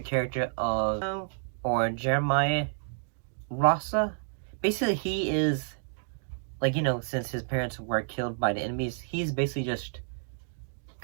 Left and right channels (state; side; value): silent; left; digital silence